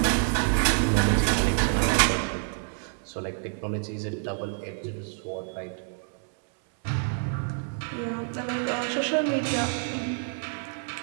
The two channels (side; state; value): left; silent; 60 dB below the other